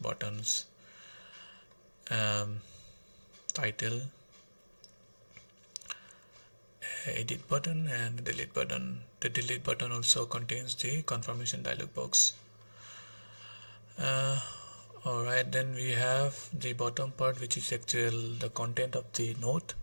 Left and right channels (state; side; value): inverted; both; correlation -1.00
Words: title, edit button, and delete button. The delete button also contains the confirmation dialog box. Alright, then we have the bottom part, which is the content of the node.